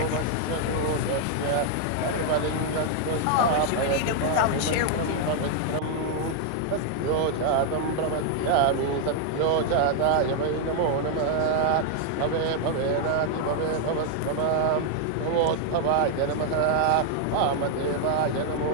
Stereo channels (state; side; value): different; both; correlation 0.00